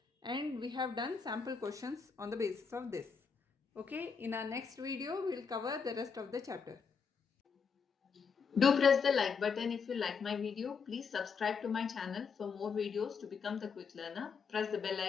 and we have done sample questions on the basis of this. Okay, in our next video we will cover the rest of the chapter. Do press the like button if you like my video. Please subscribe to my channel for more videos to become the quick learner. Press the bell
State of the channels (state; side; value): quieter; right; 5.8 dB